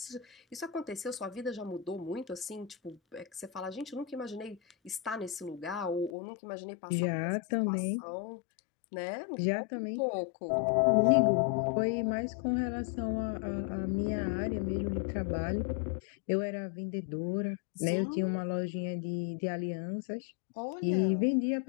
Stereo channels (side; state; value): right; drops out; at 6.1 s